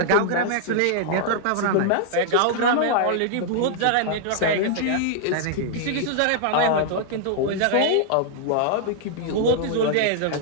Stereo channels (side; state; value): both; different; correlation -0.01